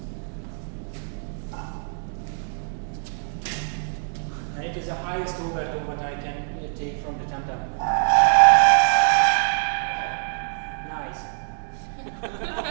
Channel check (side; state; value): left; silent; digital silence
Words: And it is the highest overtone what I can take from the tam-tam. Nice.